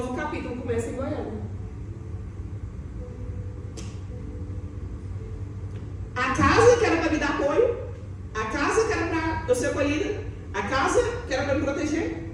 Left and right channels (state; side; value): identical; both; correlation 1.00